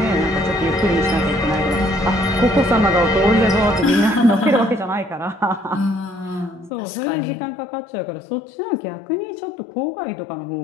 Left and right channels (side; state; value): right; drops out; at 6.7 s